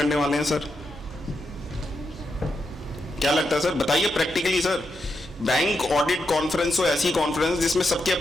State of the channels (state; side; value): normal; both; correlation 0.84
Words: वाले हैं सर। क्या लगता है सर? बताइए practically sir. Bank audit conference हो ऐसी कॉन्फ्रेंस जिसमें सबके